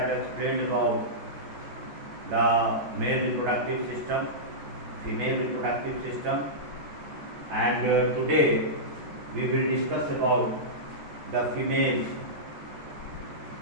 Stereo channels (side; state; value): left; late; 14 ms